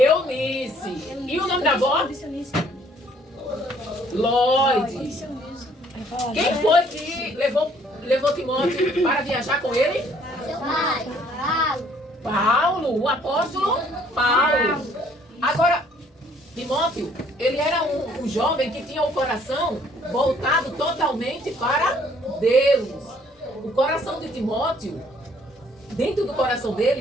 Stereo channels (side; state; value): both; normal; correlation 0.61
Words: E o nome da avó? Lloyd. Quem foi que levou Timóteo para viajar com ele? Paulo, o apóstolo Paulo. Agora, Timóteo, ele era um jovem que tinha o coração voltado totalmente para Deus. O coração de Timóteo, dentro do coração dele,